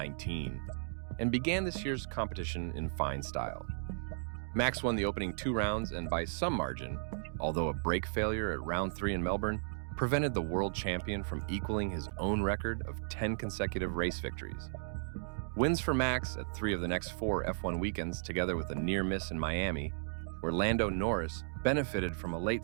and began this year's competition in fine style. Max won the opening 2 rounds and by some margin, although a brake failure at round 3 in Melbourne prevented the world champion from equaling his own record of 10 consecutive race victories. Wins for Max at 3 of the next 4 F1 weekends, together with a near miss in Miami, where Lando Norris benefited from a late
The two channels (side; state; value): left; silent; digital silence